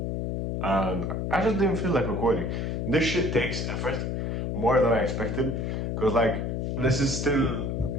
And I just didn't feel like recording. This shit takes effort, more than I expected, because like, this is still,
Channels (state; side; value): noise; left; hum, 1 dB below the sound